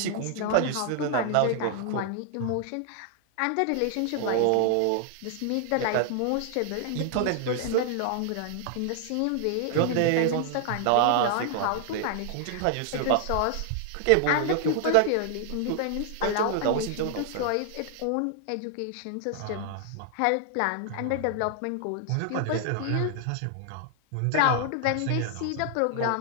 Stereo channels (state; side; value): different; both; correlation 0.00